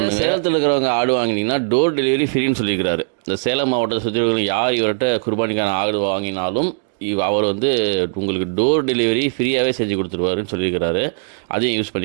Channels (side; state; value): left; silent; digital silence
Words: சேலத்தில் இருக்கிறவங்க ஆடு வாங்கினீங்கன்னா டோர் டெலிவரி ஃப்ரீன்னு சொல்லியிருக்கிறாரு. இந்த சேலம் மாவட்டத்தை சுற்றி யார் இவர்கிட்ட குர்பானிக்கான ஆடு வாங்கினாலும் அவர் வந்து உங்களுக்கு டோர் டெலிவரி ஃப்ரீயாகவே செஞ்சு கொடுத்துருவாருன்னு சொல்லியிருக்கிறாரு. அதையும் யூஸ்